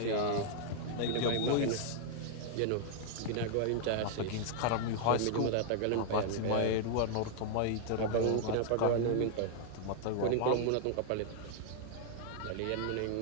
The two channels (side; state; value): both; different; correlation -0.01